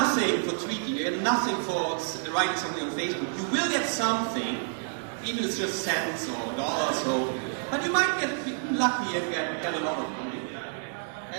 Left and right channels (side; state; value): left; silent; digital silence